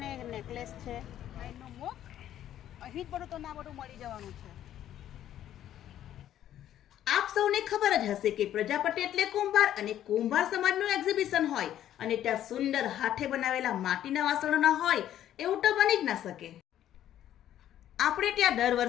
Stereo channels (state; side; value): quieter; right; 11.6 dB